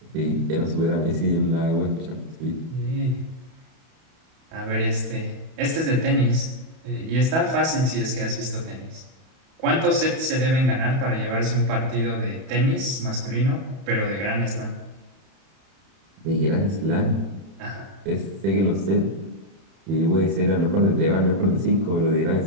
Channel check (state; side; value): late; left; 31 ms